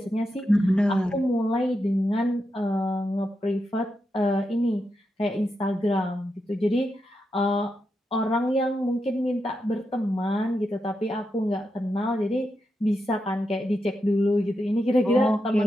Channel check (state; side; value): normal; both; correlation 0.86